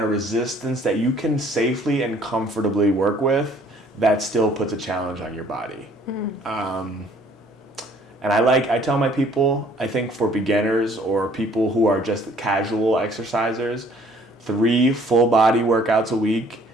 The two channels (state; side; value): normal; both; correlation 0.58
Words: resistance that you can safely and comfortably work with that still puts a challenge on your body. And I tell my people, I think for beginners or people who are just casual exercisers, 3 full body workouts a week